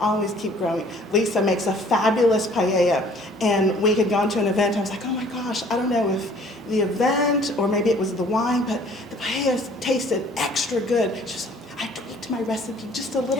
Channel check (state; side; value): normal; both; correlation 0.55